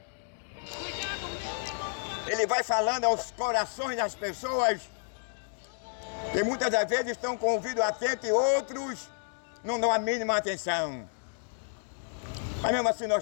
ele vai falando aos corações das pessoas que muitas das vezes estão com o ouvido atento e outros não dão a mínima atenção. Mas mesmo assim nós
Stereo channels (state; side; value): silent; right; digital silence